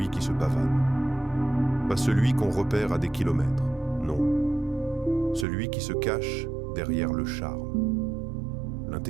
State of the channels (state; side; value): drops out; left; at 5.5 s